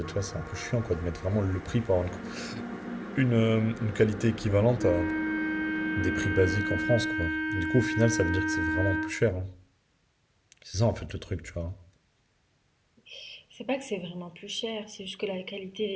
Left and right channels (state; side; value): identical; both; correlation 1.00